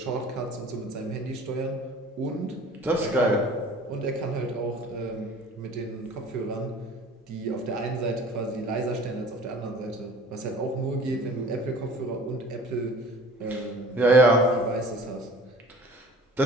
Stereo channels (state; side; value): normal; both; correlation 0.46